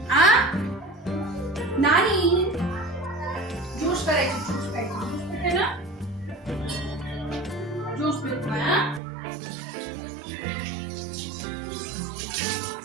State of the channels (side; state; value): left; drops out; at 9.0 s